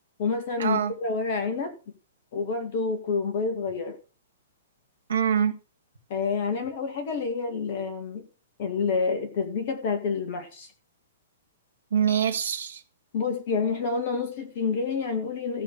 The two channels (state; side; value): inverted; both; correlation -0.44